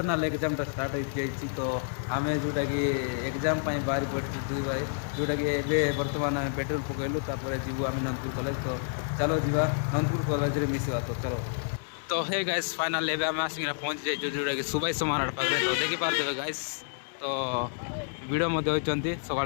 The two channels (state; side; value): silent; right; 58 dB below the other